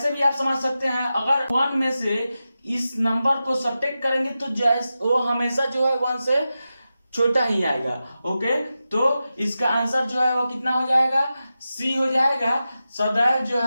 भी आप समझ सकते हैं, अगर 1 में से इस नंबर को सब्ट्रैक्ट करेंगे तो वो हमेशा जो है 1 से छोटा ही आएगा। ओके, तो इसका आंसर जो है वो कितना हो जाएगा, सी हो जाएगा, सदैव जो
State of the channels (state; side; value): inverted; both; correlation -0.92